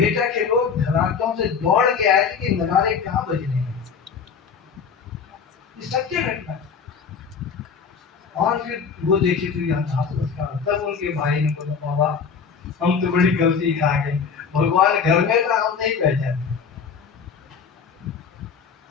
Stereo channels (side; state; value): right; quieter; 6.1 dB